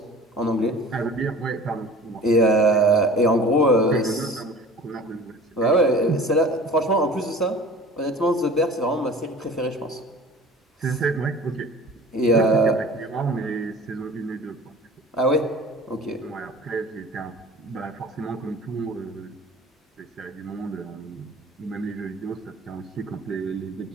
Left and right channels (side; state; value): both; normal; correlation 0.43